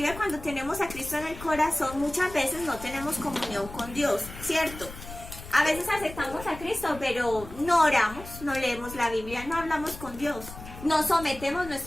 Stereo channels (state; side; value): noise; left; rumble, 14 dB below the sound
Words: cuando tenemos a Cristo en el corazón, muchas veces no tenemos comunión con Dios, ¿cierto? A veces aceptamos a Cristo, pero no oramos, no leemos la Biblia, no hablamos con Dios. No sometemos